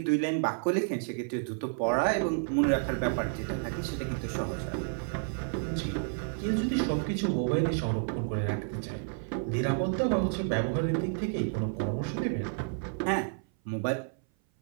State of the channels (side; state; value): left; silent; 57 dB below the other